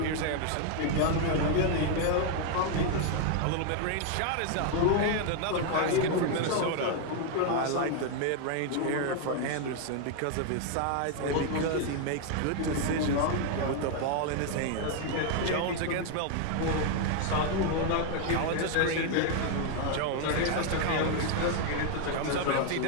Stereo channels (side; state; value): both; different; correlation 0.00